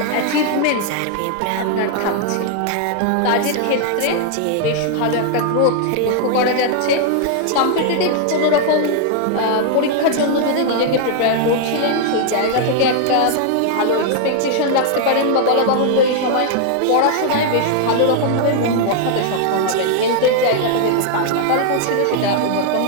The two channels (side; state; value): both; different; correlation 0.00